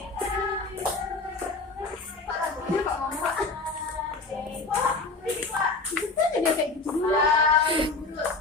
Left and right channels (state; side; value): quieter; right; 3.7 dB